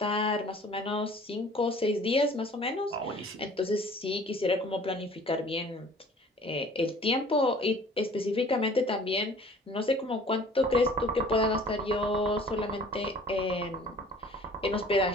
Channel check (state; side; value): normal; both; correlation 0.50